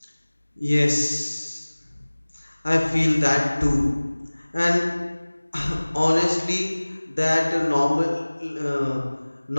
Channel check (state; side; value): inverted; both; correlation -1.00